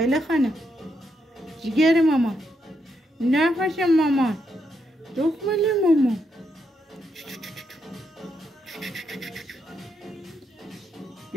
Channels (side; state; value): both; normal; correlation 0.80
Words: خانم جیگر مامان. نفس مامان. دخمل مامان.